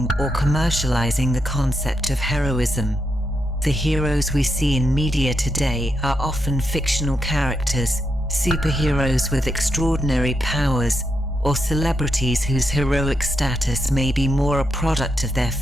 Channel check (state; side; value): normal; both; correlation 0.82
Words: or commercializing the concept of heroism. The heroes we see in media today are often fictional characters, superheroes with extraordinary powers, or celebrities whose heroic status may be more a product of their